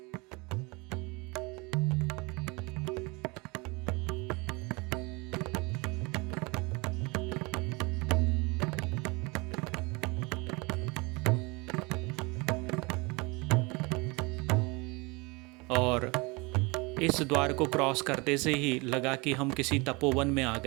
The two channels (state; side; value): quieter; left; 26.9 dB